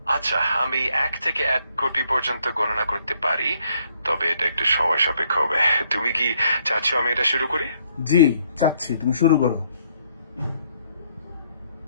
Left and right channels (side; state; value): both; inverted; correlation -0.69